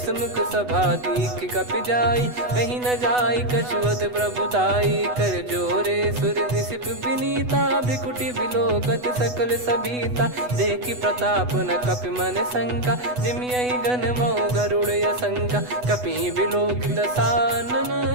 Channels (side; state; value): left; late; 8.1 ms